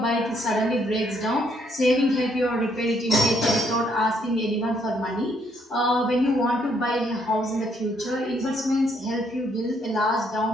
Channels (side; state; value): both; normal; correlation 0.71